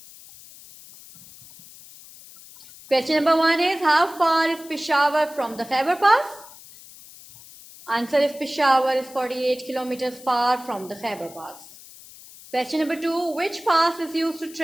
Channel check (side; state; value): left; noise; hiss, 20 dB below the sound